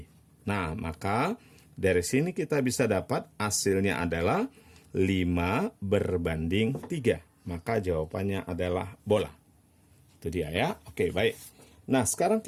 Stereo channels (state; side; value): identical; both; correlation 1.00